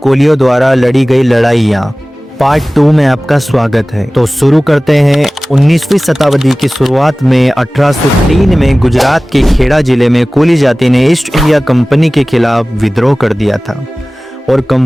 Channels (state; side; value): normal; both; correlation 0.98